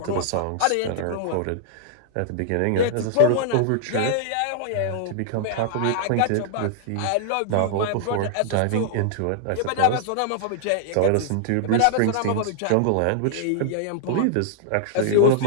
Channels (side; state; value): both; different; correlation -0.01